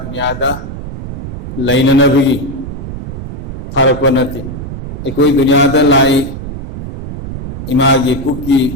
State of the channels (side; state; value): right; noise; rumble, 8 dB below the sound